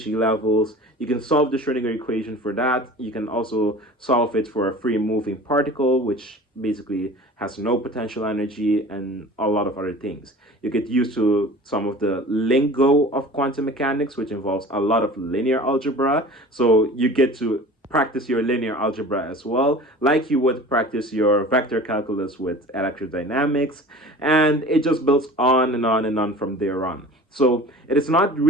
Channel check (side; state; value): both; normal; correlation 0.41